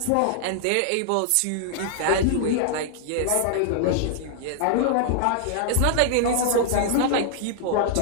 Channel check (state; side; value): different; both; correlation -0.01